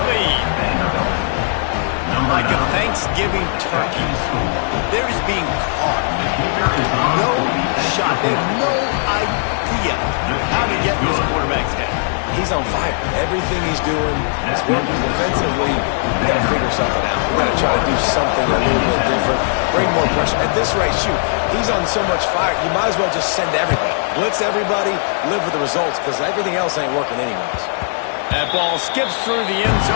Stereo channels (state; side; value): silent; right; 67 dB below the other